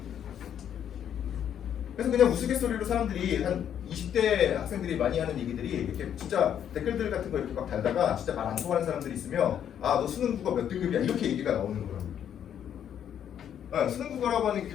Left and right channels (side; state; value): right; quieter; 9.4 dB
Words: 그래서 그냥 우스갯소리로 사람들이 한 20대 학생들이 많이 하는 얘기들이 이렇게 진짜 댓글들 같은 거 이렇게 막 달다가 진짜 말 안 통하는 사람들이 있으면 아 너 수능 국어 몇 등급이야 이렇게 얘기가 나오는 거라고. 수능 국어라고 하는 게